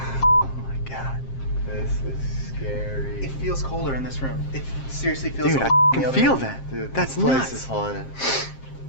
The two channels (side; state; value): right; late; 7.5 ms